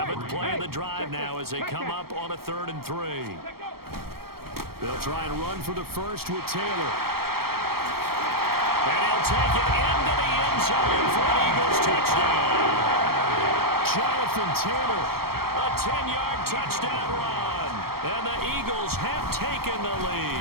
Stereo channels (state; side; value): late; left; 0.94 ms